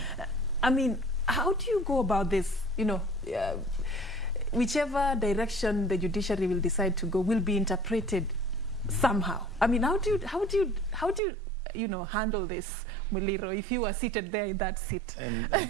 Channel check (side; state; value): left; drops out; at 11.2 s